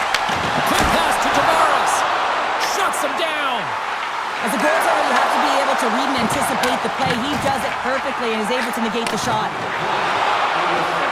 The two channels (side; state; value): both; identical; correlation 1.00